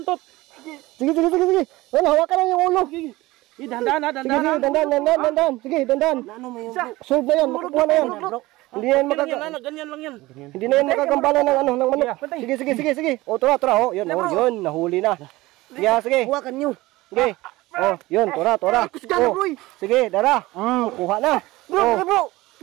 Sige. Wala, hawakan lang yung ulo. Ge. Dandan. Dandan. Sige, dandan. Ano mo yung Solve na yan, makakuha na yan. Hindi yan ganyan lang yan. Hindi na yan makagambala ng manok. Sige. O, tura. O, yun, nahuli na. Sige. Hawakan nyo. Sige. O, yun, tura. Kusgan bro. Sige, dara. Kuha na.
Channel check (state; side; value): quieter; left; 19.4 dB